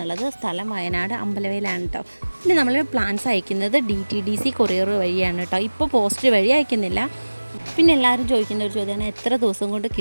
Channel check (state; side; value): inverted; both; correlation -1.00